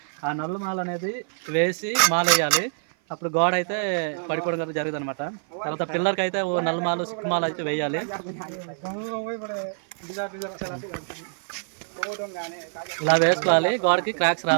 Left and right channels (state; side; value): silent; left; 56 dB below the other